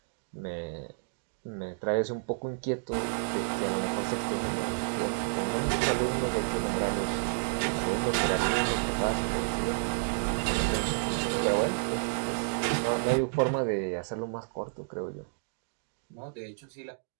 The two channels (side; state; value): left; silent; digital silence